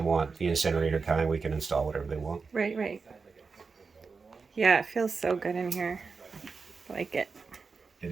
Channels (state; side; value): quieter; left; 4.8 dB